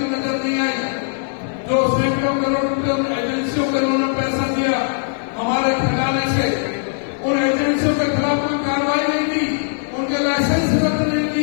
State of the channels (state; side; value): silent; right; digital silence